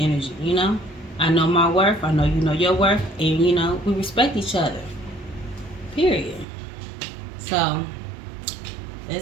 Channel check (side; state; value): left; drops out; at 6.5 s